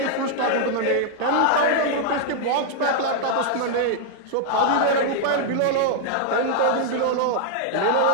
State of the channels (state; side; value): different; both; correlation 0.00